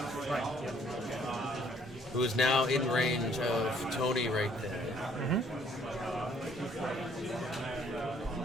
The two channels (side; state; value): both; normal; correlation 0.63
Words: who is now in range of Tony right there.